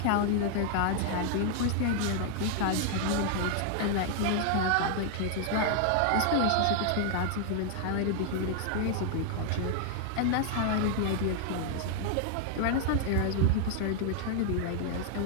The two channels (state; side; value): different; both; correlation 0.00